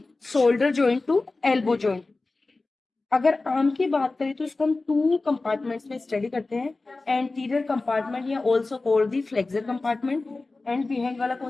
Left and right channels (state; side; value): quieter; right; 3.4 dB